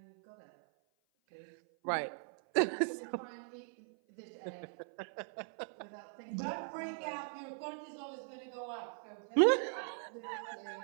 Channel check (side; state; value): left; silent; 51 dB below the other